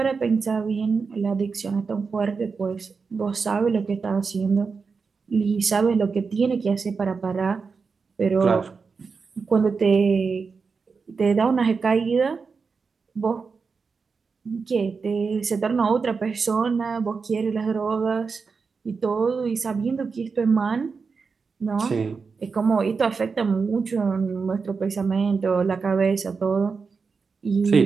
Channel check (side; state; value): left; quieter; 5.0 dB